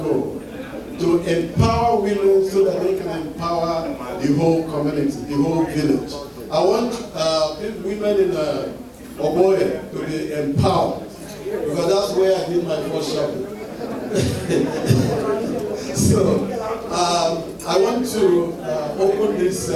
goal, to empower women so that they can empower the whole community, the whole village. I want women in Oboye to be empowered, because that's where I did my first shopping. So I want to open this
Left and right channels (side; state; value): both; identical; correlation 1.00